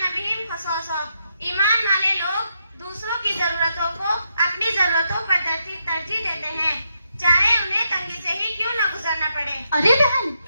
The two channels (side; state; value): both; inverted; correlation -0.81